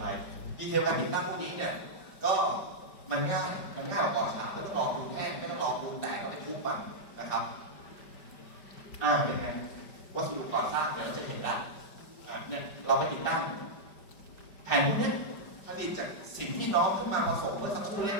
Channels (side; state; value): right; late; 5.1 ms